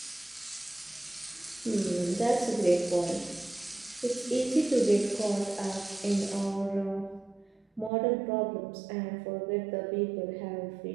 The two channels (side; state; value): left; drops out; at 7.9 s